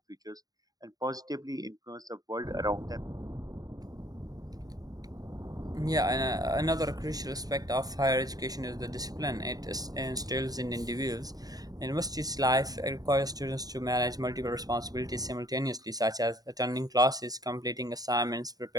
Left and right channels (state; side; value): late; left; 0.18 ms